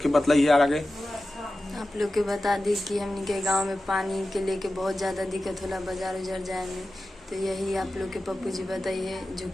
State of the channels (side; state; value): both; normal; correlation 0.94